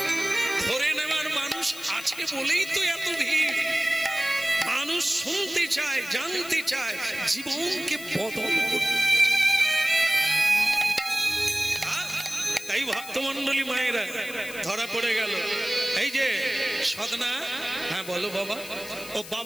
ধরে নেওয়ার মানুষ আছে বলেই তো এত ভিড়। মানুষ শুনতে চায়, জানতে চায়, জীবনকে বদল করতে। তাই ভক্তমন্ডলী মায়েরা ধরা পড়ে গেল। এই যে সদনা, হ্যাঁ বলো বাবা, ও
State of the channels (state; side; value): noise; left; hiss, 14 dB below the sound